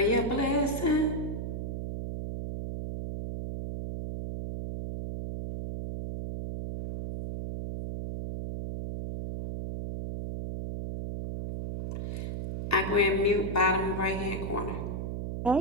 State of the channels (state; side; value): noise; right; hum, 4 dB below the sound